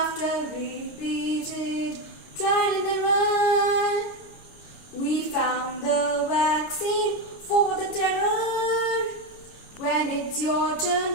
repeated trial and error, we found the vaccine for the terror. When it's your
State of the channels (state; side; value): late; right; 29 ms